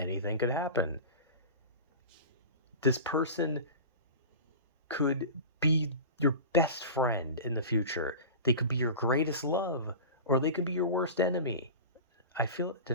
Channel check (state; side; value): inverted; both; correlation -0.31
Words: could happen. This person could be your best friend in the future. They could be your greatest love, or they could be your worst enemy. I feel, did